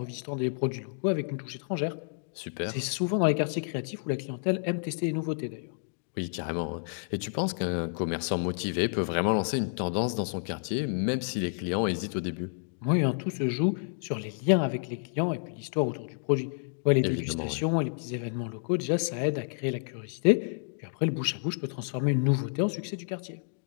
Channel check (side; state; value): right; silent; digital silence